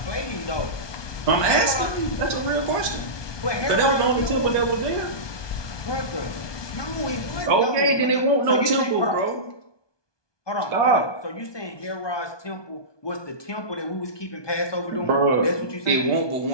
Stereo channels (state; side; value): late; right; 1.2 ms